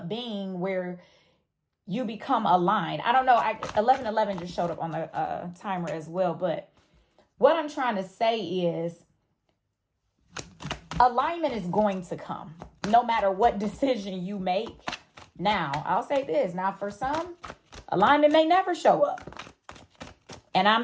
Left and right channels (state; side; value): identical; both; correlation 1.00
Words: being where you become aligned. I don't know. 1111 just showed up on the timer as well. But what I'm trying to say is alignment is going to come no matter what decision you make. Now, I'll say this. Now, for some, alignment may never show up. And I'm